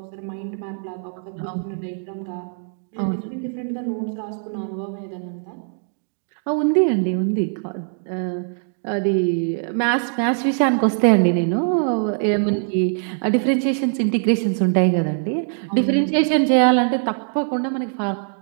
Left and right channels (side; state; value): left; silent; digital silence